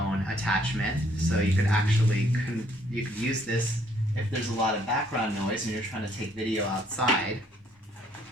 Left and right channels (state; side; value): normal; both; correlation 0.65